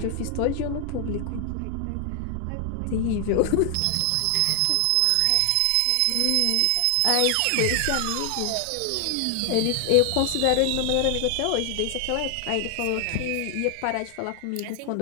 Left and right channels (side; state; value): both; different; correlation 0.00